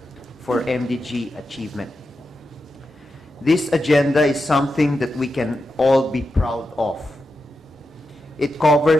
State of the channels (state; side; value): normal; both; correlation 0.89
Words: for MDG Achievement. This agenda is something that we can all be proud of. It